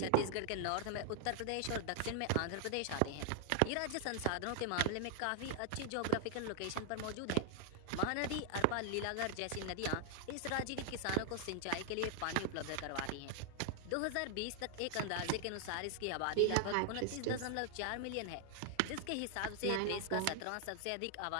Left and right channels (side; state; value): both; different; correlation 0.00